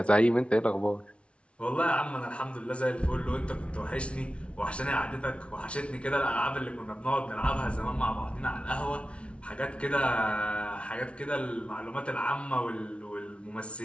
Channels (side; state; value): right; late; 0.060 ms